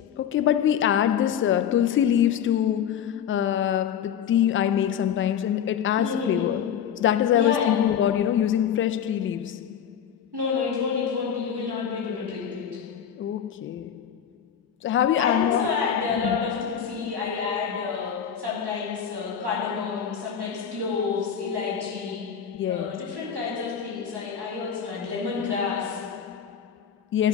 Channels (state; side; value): quieter; right; 8.5 dB